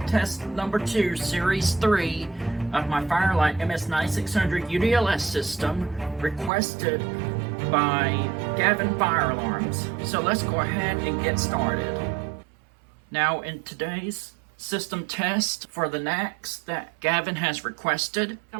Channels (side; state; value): left; drops out; at 6.5 s